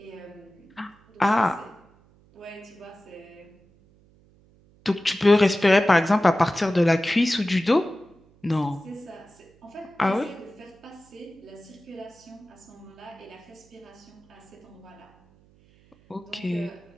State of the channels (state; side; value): noise; right; hum, 30 dB below the sound